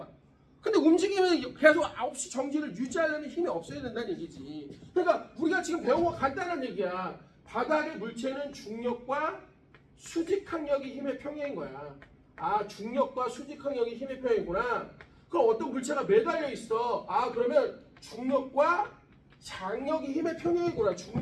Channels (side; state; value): both; identical; correlation 1.00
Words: 근데 움직이면 계속 없이 정지를 유지하려면 힘이 없어야 된다는 얘기지. 그러니까 우리가 지금 배운 거 간단한 얘기야. 바닥의 물체는 중력과 수직항력이 힘의 평형인 거야. 아, 중력과 수직항력이 힘의 평형이구나. 그럼 어떤 물체가 매달려 있어. 아, 그러면 중력과 장력이 힘의 평형이구나.